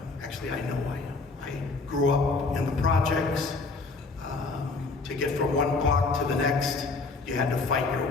know I am. I grew up in the projects. To get from one block to the next, you had to fight your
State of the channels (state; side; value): quieter; right; 3.9 dB